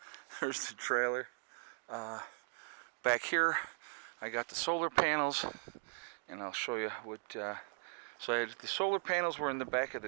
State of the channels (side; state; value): left; silent; digital silence